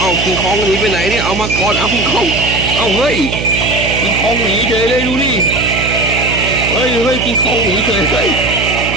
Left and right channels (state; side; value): noise; right; hum, 5 dB below the sound